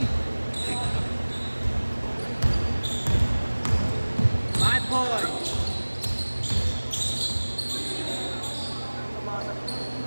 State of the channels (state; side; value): inverted; both; correlation -1.00